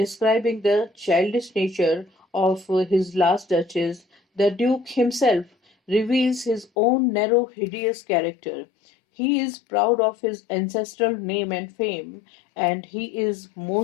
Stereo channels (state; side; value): drops out; right; at 6.7 s